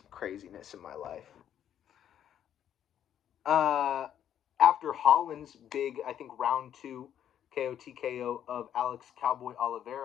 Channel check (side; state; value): right; quieter; 10.0 dB